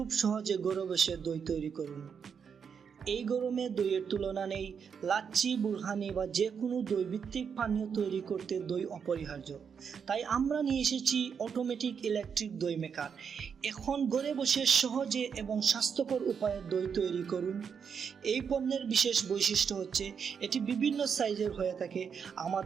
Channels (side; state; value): left; quieter; 6.8 dB